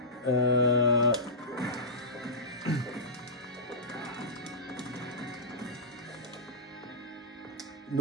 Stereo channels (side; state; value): both; normal; correlation -0.16